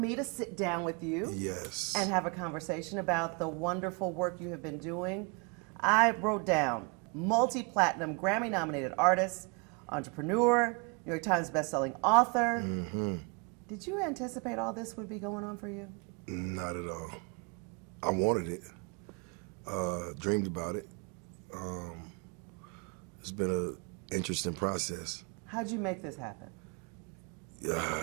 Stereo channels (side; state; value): left; quieter; 32.4 dB